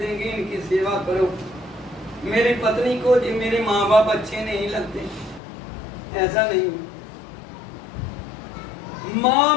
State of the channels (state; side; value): drops out; right; at 5.4 s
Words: इनकी सेवा करो। मेरी पत्नी को मेरे माँ बाप अच्छे नहीं लगते, ऐसा नहीं।